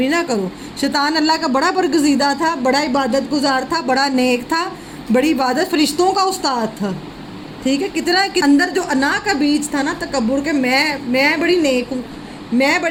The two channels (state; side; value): identical; both; correlation 1.00